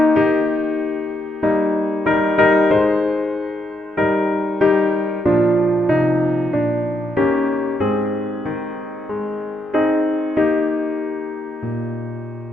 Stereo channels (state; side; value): normal; both; correlation 0.79